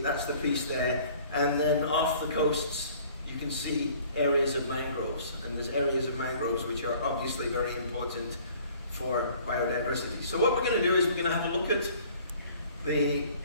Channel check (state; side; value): inverted; both; correlation -0.53